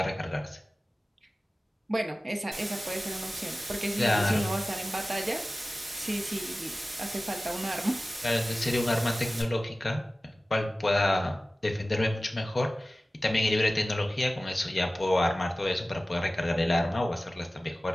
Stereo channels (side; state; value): both; normal; correlation 0.97